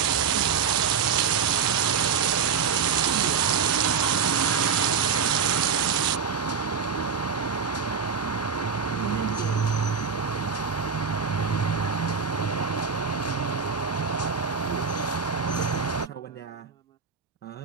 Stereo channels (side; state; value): left; quieter; 6.3 dB